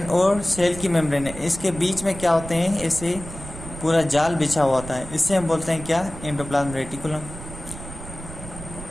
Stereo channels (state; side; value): noise; right; rumble, 12 dB below the sound